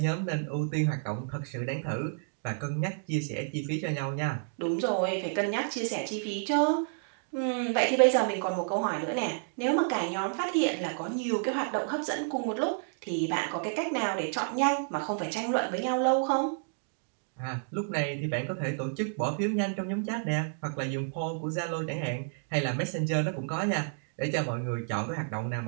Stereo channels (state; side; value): silent; left; digital silence